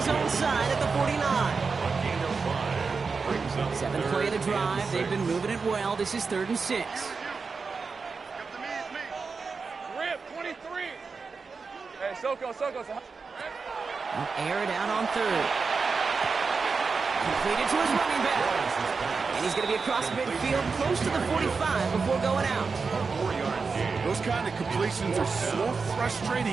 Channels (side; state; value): left; quieter; 4.8 dB